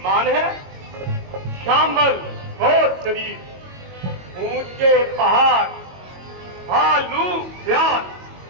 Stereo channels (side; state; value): left; late; 22 ms